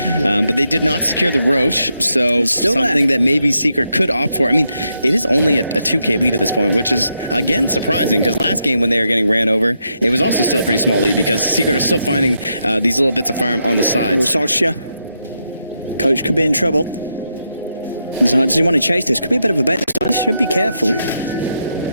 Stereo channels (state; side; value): inverted; both; correlation -0.82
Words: But they did not secure the Roche, so something that maybe Secret could opt for. I mean, it is only a 2K lead at this point, which is, again, surprising because last game when they were getting ran over, it was also still a pretty small lead because Secret are still finding these little bits of farm on the sides. Coach could be in trouble. Does he want to chase this? Could be a bit of a bet this time. Should be careful.